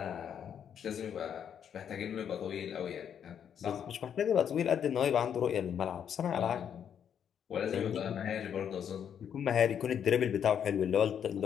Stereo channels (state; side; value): quieter; right; 8.5 dB